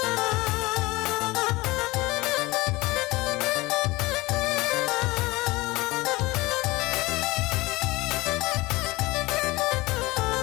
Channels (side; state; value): right; quieter; 21.4 dB